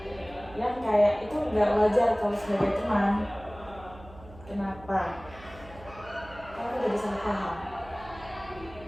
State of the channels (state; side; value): noise; right; hum, 19 dB below the sound